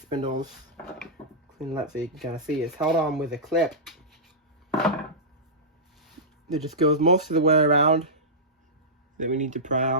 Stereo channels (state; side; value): normal; both; correlation -0.15